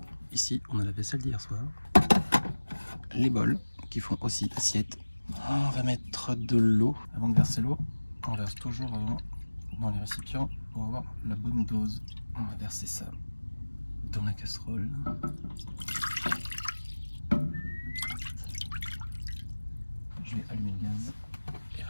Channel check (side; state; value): both; inverted; correlation -1.00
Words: Ici, on a la vaisselle d'hier soir. Les bols qui font aussi assiette. On va mettre de l'eau. Avant de verser l'eau, on verse toujours avant dans les récipients pour avoir la bonne dose. On va verser ça dans la casserole. Je vais allumer le gaz et